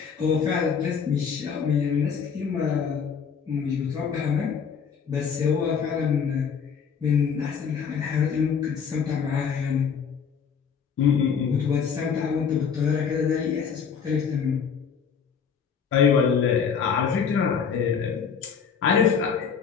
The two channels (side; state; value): right; quieter; 6.7 dB